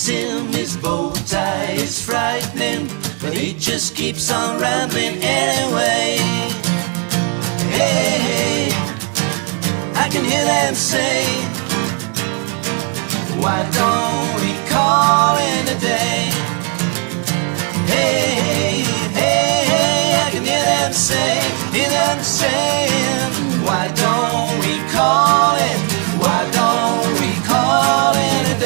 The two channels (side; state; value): left; quieter; 35.2 dB